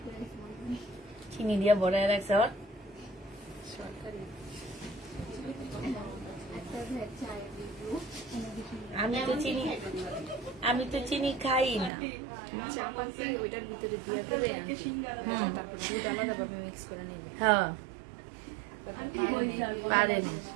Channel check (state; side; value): drops out; left; at 11.9 s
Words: চিনি দিয়া বড়ায় রাখছে। আর আমি তো চিনি খাই না। ওইটার ভিতরে দিয়ে করে তারপর দুধ আলাদা ভাবে মিক্স করে নেবে। হ্যাঁ, পারেন।